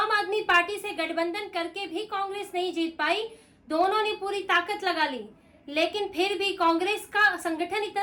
आदमी पार्टी से गठबंधन करके भी कांग्रेस नहीं जीत पाई। दोनों ने पूरी ताकत लगा ली लेकिन फिर भी कांग्रेस का संगठन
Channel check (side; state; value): both; identical; correlation 1.00